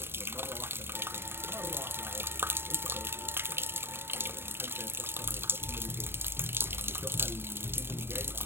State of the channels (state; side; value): late; left; 0.11 ms